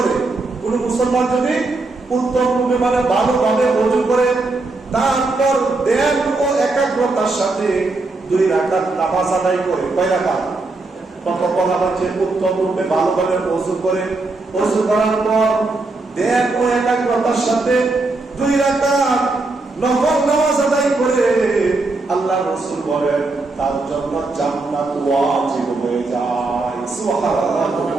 কোন মুসলমান যদি উত্তম রূপে মানে ভালোভাবে ওযু করে, তারপর ধ্যান ও একাগ্রতার সাথে 2 রাকাত নামাজ আদায় করে, কয় রাকাত? প্রথম বলা হচ্ছে উত্তম রূপে ভালোভাবে ওযু করে, ওযু করার পর ধ্যান ও একাগ্রতার সাথে 2 রাকাত নফল নামাজ আদায় করে, আল্লাহ রাসূল বলেন তার জন্য জান্নাত ওয়াজিব হয়ে যায়।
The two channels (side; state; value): left; quieter; 3.3 dB